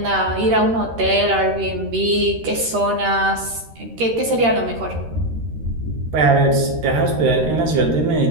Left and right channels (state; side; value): late; left; 13 ms